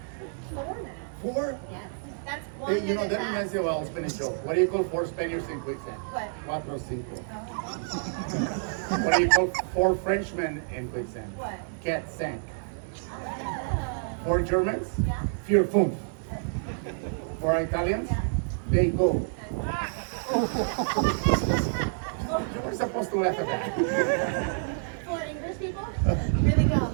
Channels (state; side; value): silent; left; 59 dB below the other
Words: 4 minutes. 4? Yes. That's 1 Hey, you know, minute that fast. reminds me of a Spanish joke. What do you call 4 Spaniards in quicksand? What? Cuatro cinco. What do you call 4 Frenchmen in quicksand? What? Cat sank. Oh. 4 Germans? Yeah. Vier fünf. 4 Italians? Yeah. They go. You were supposed to laugh at that. 4 English people? Really go.